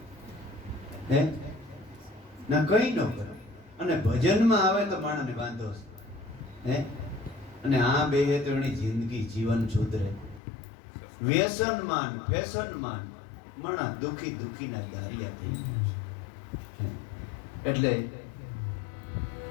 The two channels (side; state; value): right; drops out; at 10.4 s